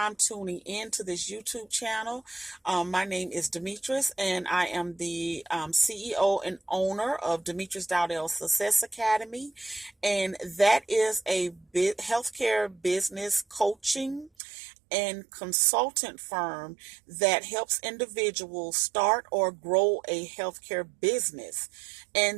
tuning in to this YouTube channel, my name is Demetrius, and I am the CEO and owner of Demetrius Dowdell Success Academy, and that is a healthcare business coaching and consultant firm that helps individuals start or grow a healthcare business.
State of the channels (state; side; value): drops out; left; at 14.3 s